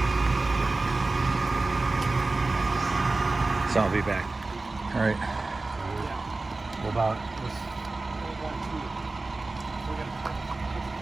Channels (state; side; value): quieter; left; 3.3 dB